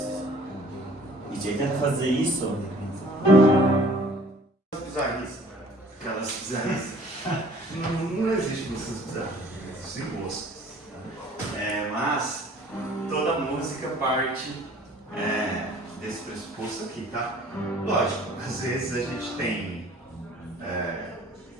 E aí tenta fazer isso. Bizarrice. Aquelas bizarrices. Não existe músicas bizarras, existem gostos. Mas toda música parte desse pressuposto aqui, tá? Lógico, às vezes a gente tem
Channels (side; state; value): both; normal; correlation 0.52